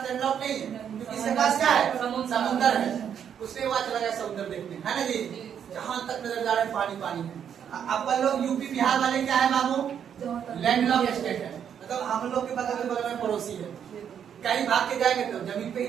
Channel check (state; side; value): quieter; left; 8.5 dB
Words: लैंड लॉक नहीं है, क्योंकि इसके पास क्या है? समुद्र है। उसने वहां चला गया समुद्र देखने, है ना जी? जहां तक नजर जा रहा है पानी पानी है। अपन लोग यूपी बिहार वाले क्या है बाबू? लैंड लॉक स्टेट है, मतलब हम लोग के बगल में पड़ोसी है। कहीं भाग के जाएंगे तो जमीन पे ही